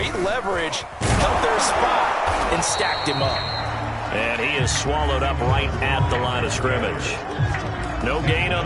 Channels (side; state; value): both; identical; correlation 1.00